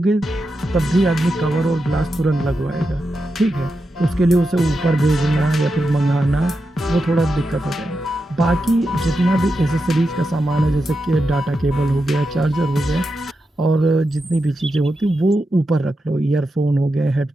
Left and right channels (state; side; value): normal; both; correlation 0.88